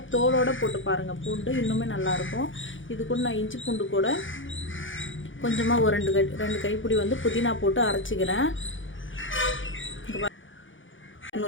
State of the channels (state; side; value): late; right; 0.56 ms